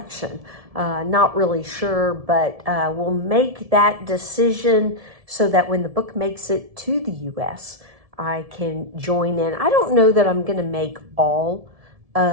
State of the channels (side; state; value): left; late; 1.7 ms